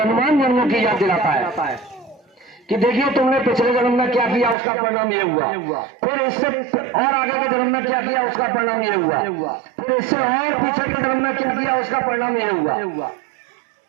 जन्मों की याद दिलाता है कि देखिए तुमने पिछले जन्म में क्या किया, उसका परिणाम ये हुआ, फिर इससे और आगे के जन्म में क्या किया, उसका परिणाम ये हुआ, फिर इससे और पीछे के जन्म में क्या किया, उसका परिणाम ये हुआ।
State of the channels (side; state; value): left; drops out; at 4.5 s